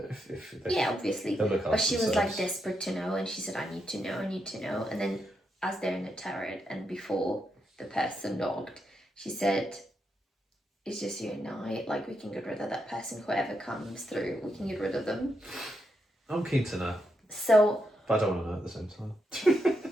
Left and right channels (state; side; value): normal; both; correlation 0.82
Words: if they, yeah, obviously, but she was like desperate to know, and she said, I need to know, and then as they're in the turret and before the person knocked, she said, it's just you and I, like, we can get rid of that person, whoever comes through, we can get rid of them. I'm keen to know. So, but I don't want to know at the same time.